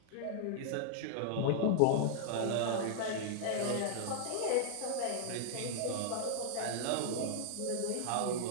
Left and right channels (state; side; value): different; both; correlation -0.01